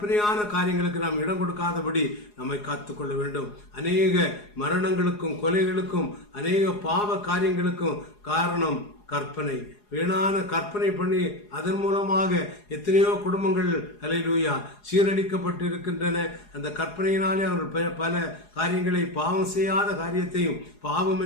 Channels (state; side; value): late; right; 4.8 ms